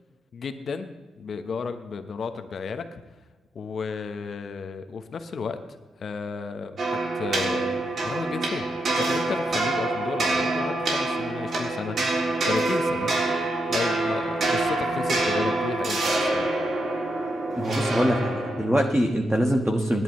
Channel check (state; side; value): normal; both; correlation 0.84